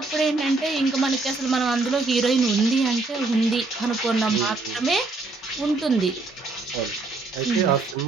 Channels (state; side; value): quieter; left; 3.5 dB